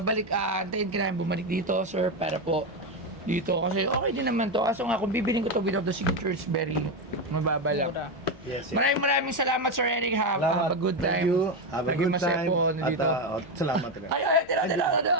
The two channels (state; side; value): normal; both; correlation 0.11